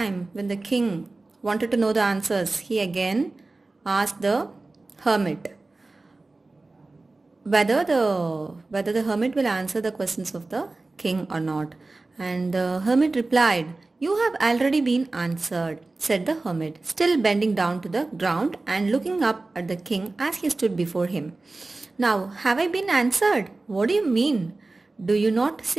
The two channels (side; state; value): left; quieter; 3.3 dB